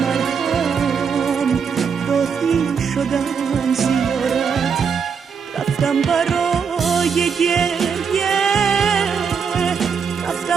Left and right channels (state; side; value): quieter; left; 6.3 dB